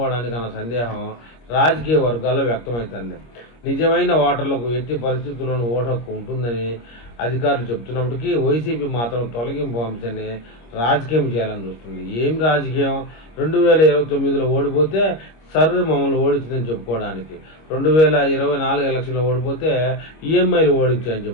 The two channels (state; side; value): late; right; 25 ms